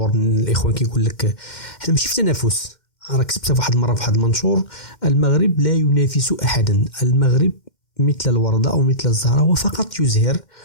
الاخوان كيقول لك حنا ماشي في تنافس. راه كتبتها في واحد المره في واحد المنشور المغرب لا ينافس احدا. المغرب مثل الوردة أو مثل الزهرة وفقط يزهر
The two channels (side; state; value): right; late; 2.1 ms